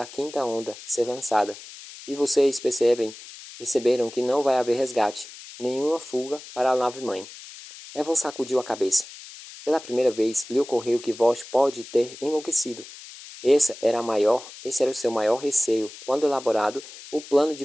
quinta onda ser lançada. E vocês perceberam que não vai haver resgate, nenhuma fuga para a nave-mãe. Evan sacudiu a cabeça. Pela primeira vez, lhe ocorreu que Vosch pode ter enlouquecido. Esse era o seu maior receio quando elaborado o plano de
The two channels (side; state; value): left; noise; hiss, 16 dB below the sound